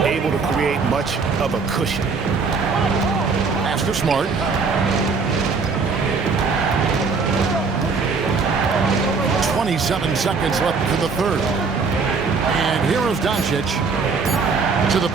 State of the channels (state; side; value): quieter; left; 4.8 dB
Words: able to create much of a cushion. Pass to Smart. .27 seconds left to the third. And here is Doncic to the